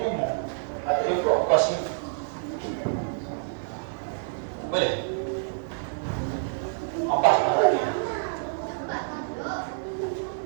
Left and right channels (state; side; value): silent; left; 55 dB below the other